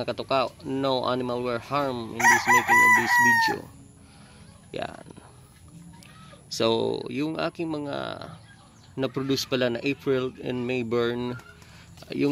katuka, no animal were harmed in this making of this video. Yan. So, yung aking mga na-produce pala na April and May burn,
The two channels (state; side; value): identical; both; correlation 1.00